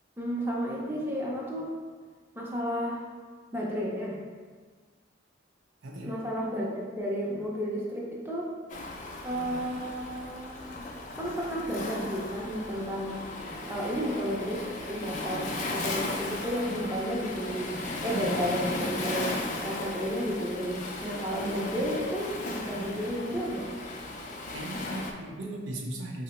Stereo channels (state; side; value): normal; both; correlation 0.43